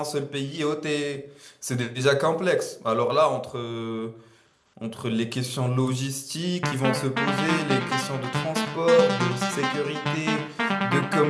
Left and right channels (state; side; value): identical; both; correlation 1.00